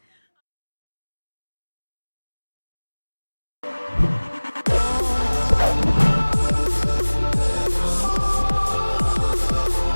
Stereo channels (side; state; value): both; inverted; correlation -1.00